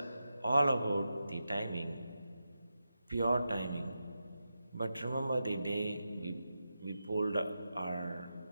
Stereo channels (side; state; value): both; inverted; correlation -0.89